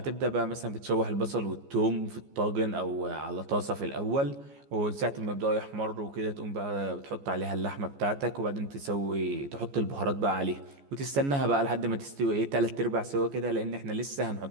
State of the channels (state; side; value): late; left; 14 ms